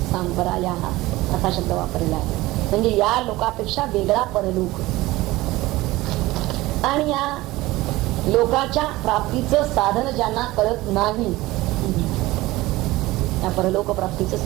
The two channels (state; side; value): quieter; left; 18.9 dB